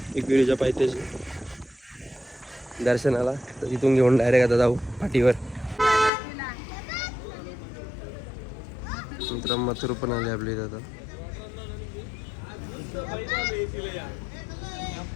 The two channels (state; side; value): drops out; right; at 6.1 s